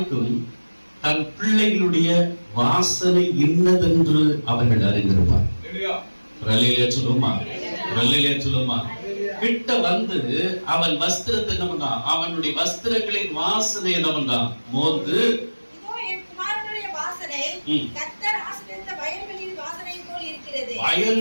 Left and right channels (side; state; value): both; inverted; correlation -1.00